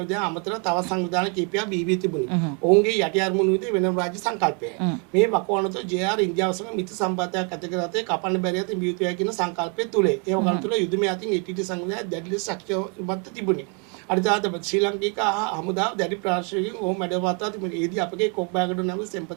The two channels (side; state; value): left; quieter; 36.4 dB